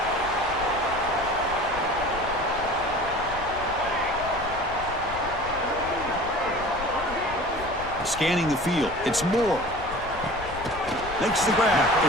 Scanning the field, it's Moore. Makes the grab,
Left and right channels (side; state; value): left; noise; rumble, 13 dB below the sound